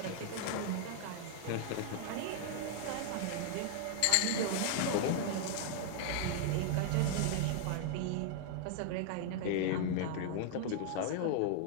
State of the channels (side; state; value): both; different; correlation 0.00